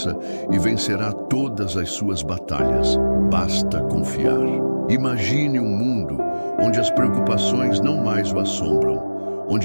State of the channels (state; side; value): inverted; both; correlation -1.00